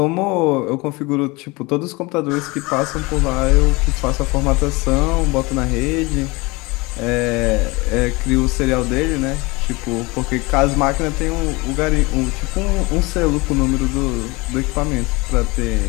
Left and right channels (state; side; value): quieter; right; 24.6 dB